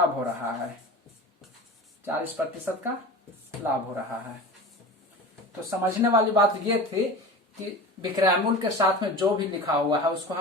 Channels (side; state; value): both; normal; correlation 0.33